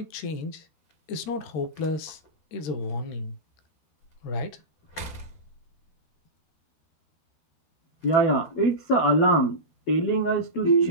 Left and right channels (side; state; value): right; late; 13 ms